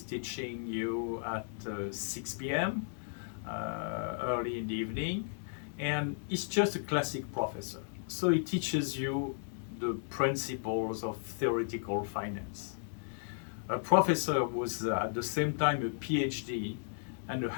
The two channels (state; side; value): silent; right; digital silence